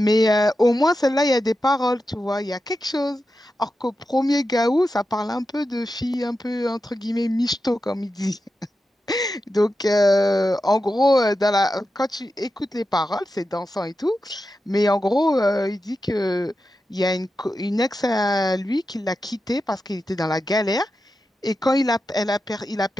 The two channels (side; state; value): both; normal; correlation 0.90